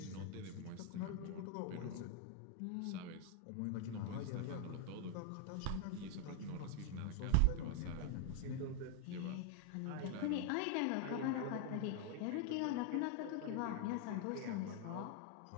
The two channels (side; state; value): both; different; correlation 0.00